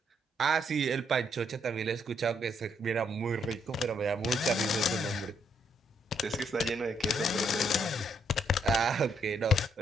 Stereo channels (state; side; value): normal; both; correlation 0.73